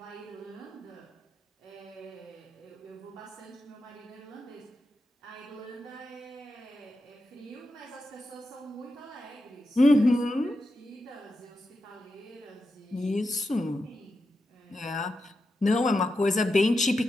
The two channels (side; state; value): both; normal; correlation 0.88